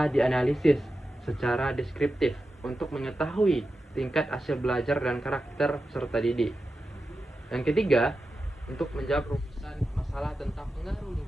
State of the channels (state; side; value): normal; both; correlation 0.91